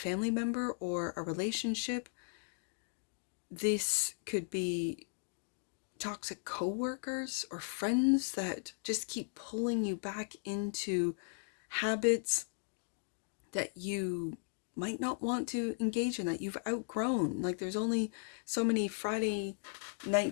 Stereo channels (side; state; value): right; silent; digital silence